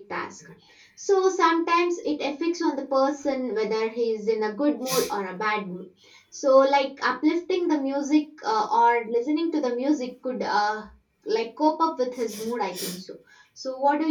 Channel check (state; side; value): identical; both; correlation 1.00